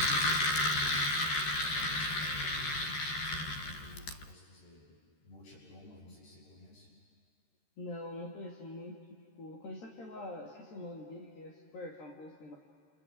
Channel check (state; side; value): late; right; 13 ms